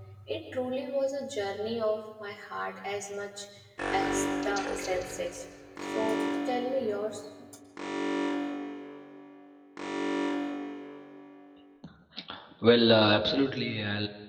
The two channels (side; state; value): both; identical; correlation 1.00